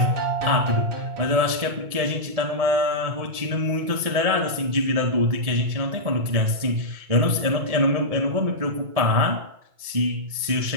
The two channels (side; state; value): left; late; 1.7 ms